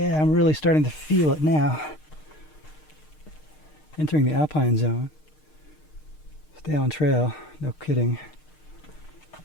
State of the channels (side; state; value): right; late; 6.5 ms